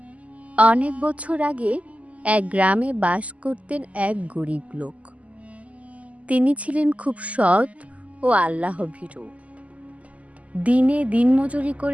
অনেক বছর আগে এক গ্রামে বাস করতেন এক গরিব লোক। তিনি ছিলেন খুব সৎ ও আল্লাহভীরু। দিনে দিনমজুরি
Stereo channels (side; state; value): left; late; 0.069 ms